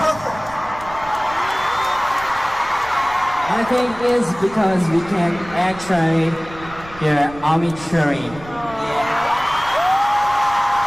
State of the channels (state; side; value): noise; right; rumble, 18 dB below the sound